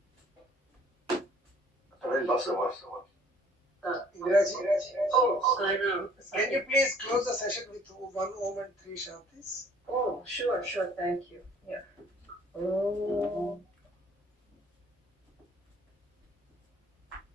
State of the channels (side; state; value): both; normal; correlation 0.56